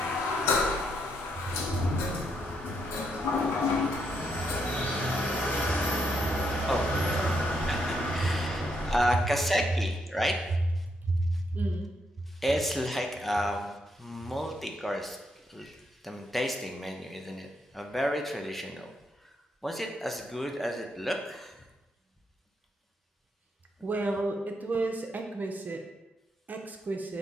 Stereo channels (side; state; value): both; normal; correlation 0.78